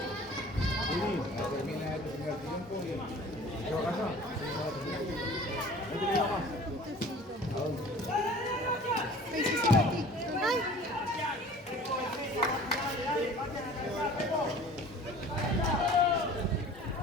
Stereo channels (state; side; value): normal; both; correlation 0.45